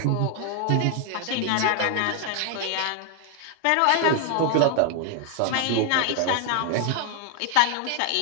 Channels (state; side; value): different; both; correlation 0.00